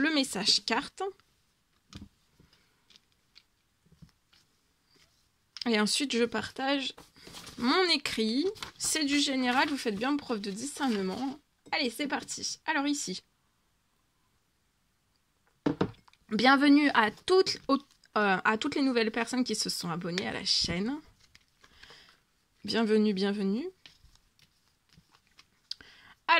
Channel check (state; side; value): identical; both; correlation 1.00